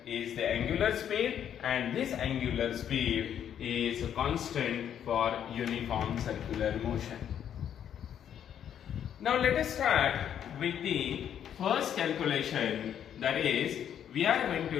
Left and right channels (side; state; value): right; quieter; 9.4 dB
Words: is the angular speed, and this angular speed is constant for uniform circular motion. Now let us start with the first calculation, that is we are going